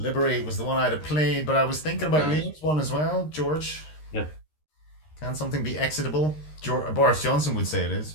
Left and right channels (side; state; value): right; late; 13 ms